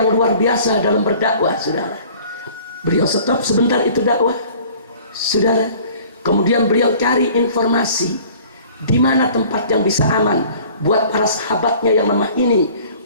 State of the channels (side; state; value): both; inverted; correlation -0.50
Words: luar biasa dalam berdakwah, saudara. Beliau stop sebentar itu dakwah, saudara. Kemudian beliau cari informasi di mana tempat yang bisa aman buat para sahabatnya yang lemah ini